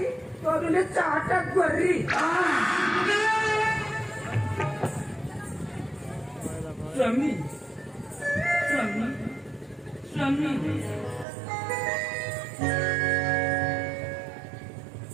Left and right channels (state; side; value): drops out; left; at 11.2 s